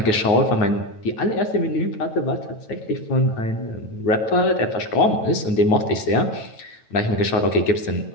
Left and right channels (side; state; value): right; late; 9.2 ms